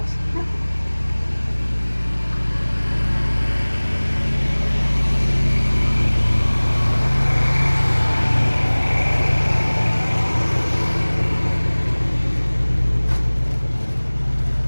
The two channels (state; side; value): inverted; both; correlation -1.00